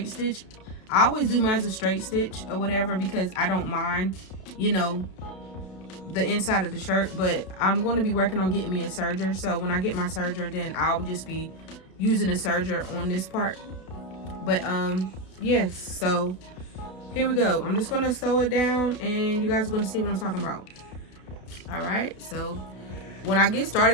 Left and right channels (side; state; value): right; late; 32 ms